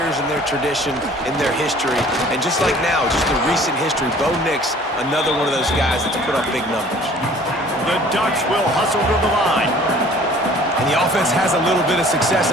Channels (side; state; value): both; normal; correlation 0.51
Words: in their tradition, in their history, and just like now, just the recent history, Bo Nix, another one of those guys that's put up big numbers. The Ducks will hustle to the line. And the offense has a little bit of